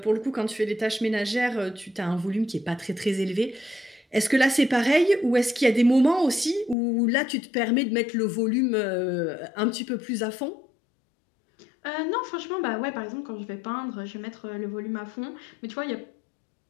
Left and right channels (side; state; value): right; drops out; at 6.8 s